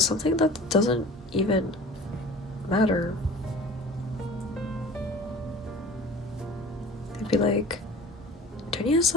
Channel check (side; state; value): both; normal; correlation 0.42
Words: something that doesn't even matter. They'd be like, Tonia's